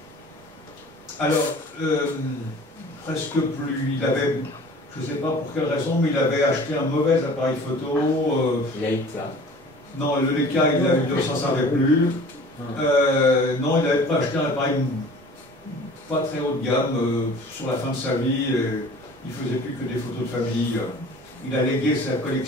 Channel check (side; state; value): both; normal; correlation 0.46